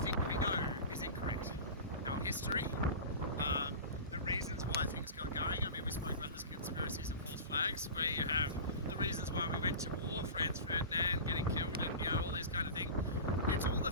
we know is incorrect. Our history, the reasons why things got going. I mean, we spoke about this conspiracies and false flags, where you have the reasons why we went to war, Franz Ferdinand getting killed, and all these kind of things. It's all a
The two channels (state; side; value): inverted; both; correlation -0.32